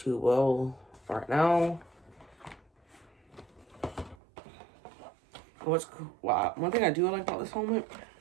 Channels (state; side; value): drops out; left; at 4.2 s